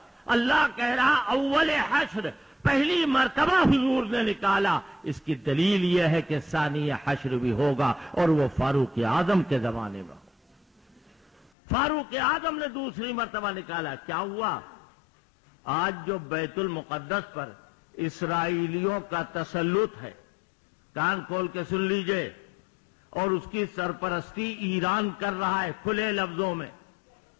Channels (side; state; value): right; drops out; at 11.5 s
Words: اللہ کہہ رہا اول حشر، پہلی مرتبہ حضور نے نکالا، اس کی دلیل یہ ہے کہ ثانی حشر بھی ہوگا، اور وہ فاروق اعظم کے زمانے میں۔ فاروق اعظم نے دوسری مرتبہ نکالا، کیا ہوا؟ آج جو بیت المقدس پر اسرائیلیوں کا تسلط ہے، کان کھول کے سن لیجئے، اور اس کی سرپرستی ایران کر رہا ہے کھلے لفظوں میں۔